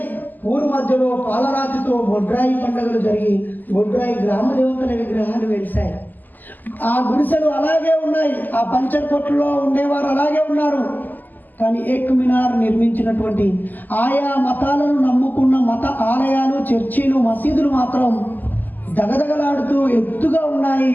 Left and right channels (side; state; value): right; late; 0.085 ms